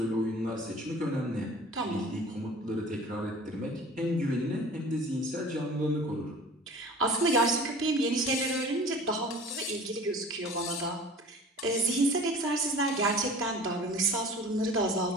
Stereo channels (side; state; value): both; normal; correlation 0.43